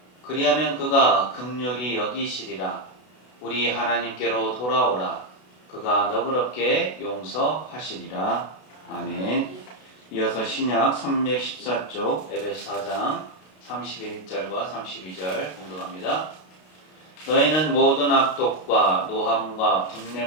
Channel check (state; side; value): late; right; 32 ms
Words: 그리하면 그가 긍휼히 여기시리라. 우리 하나님께로 돌아오라. 그가 너그럽게 용서하시리라. 아멘. 이어서 신약 314쪽 에베소 4장 31절과 32절 공독합니다. 너희는 모든 악독과 노함과